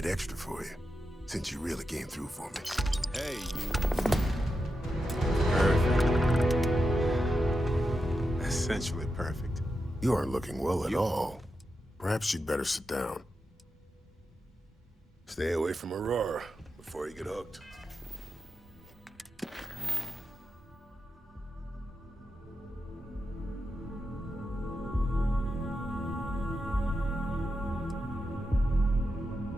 extra for you, since you really came through for me. Hey, you. Perfect. Essentially perfect. You aren't looking well at all. Perhaps you'd better sit down. Stay away from Aurora before you get hooked.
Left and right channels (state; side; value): normal; both; correlation 0.88